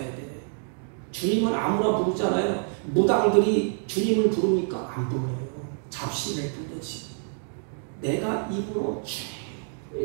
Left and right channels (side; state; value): left; silent; 56 dB below the other